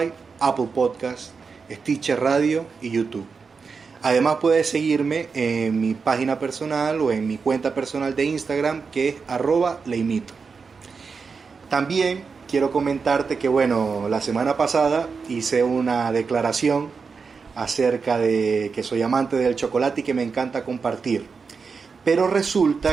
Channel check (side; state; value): left; quieter; 5.2 dB